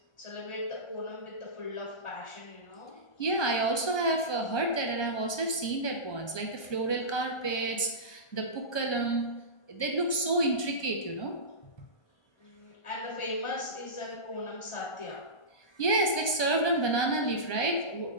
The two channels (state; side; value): late; right; 1.2 ms